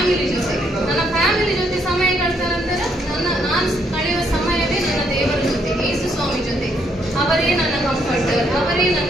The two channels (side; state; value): both; normal; correlation 0.72